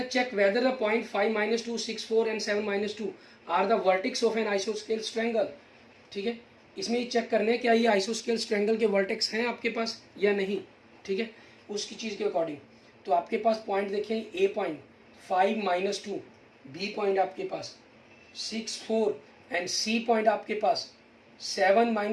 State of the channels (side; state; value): both; identical; correlation 1.00